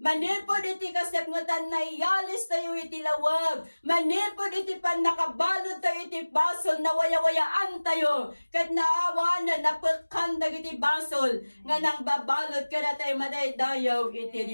manipod iti kasepngutan na iyalis tayo iti lawag, manipod iti panakabalod tayo iti basol, na waya-wayaan tayo, kat naawanan, napagkandag iti basol, nga nang babalod ka na tayo madaydayaw iti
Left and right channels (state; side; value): inverted; both; correlation -1.00